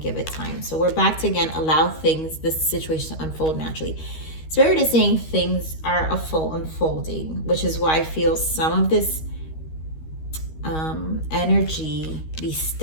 it time. So we're back to, again, allow things, this situation to unfold naturally. Spirit is saying things are a full unfolding, which is why I feel some of this energy, these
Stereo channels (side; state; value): right; late; 13 ms